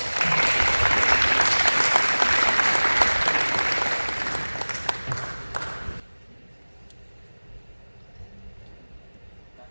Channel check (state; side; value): inverted; both; correlation -1.00